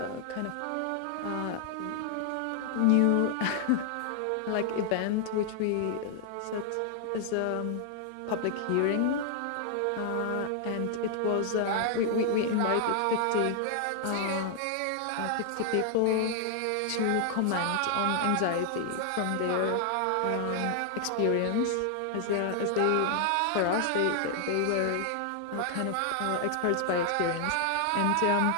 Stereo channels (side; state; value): both; different; correlation 0.00